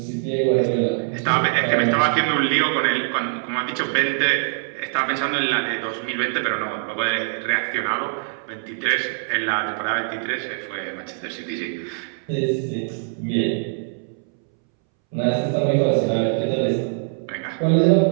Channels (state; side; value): silent; left; 64 dB below the other